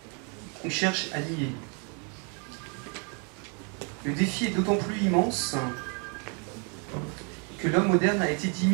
qu'on cherche à nier. Le défi est d'autant plus immense que l'homme moderne a été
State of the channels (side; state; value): left; quieter; 37.1 dB